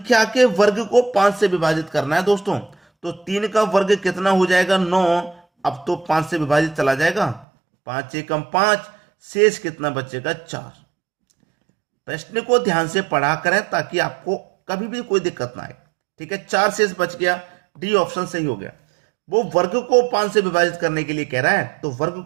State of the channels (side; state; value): left; drops out; at 7.5 s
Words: के वर्ग को 5 से विभाजित करना है दोस्तों। तो 3 का वर्ग कितना हो जाएगा? 9। अब तो 5 से विभाजित चला जाएगा, 5 एकम 5, शेष कितना बचेगा? 4। प्रश्न को ध्यान से पढ़ा करें ताकि आपको कभी भी कोई दिक्कत ना आए। ठीक है, 4 शेष बच गया, डी ऑप्शन सही हो गया। वो वर्ग को 5 से विभाजित करने के लिए कह रहा है, तो वर्ग